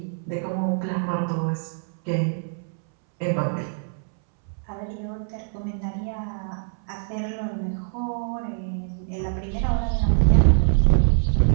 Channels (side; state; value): left; silent; 62 dB below the other